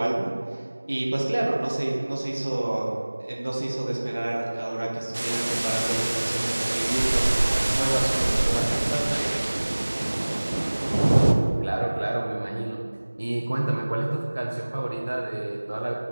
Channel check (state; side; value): inverted; both; correlation -1.00